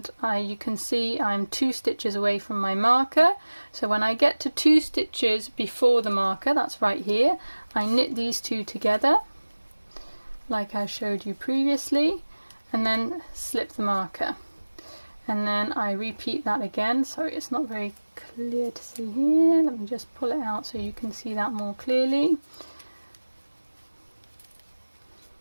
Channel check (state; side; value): inverted; both; correlation -1.00